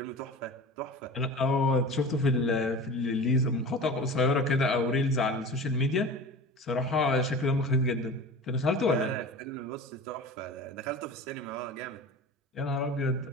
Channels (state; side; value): normal; both; correlation 0.35